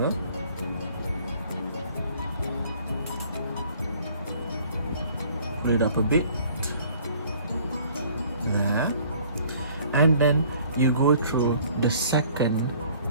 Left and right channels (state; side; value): inverted; both; correlation -0.54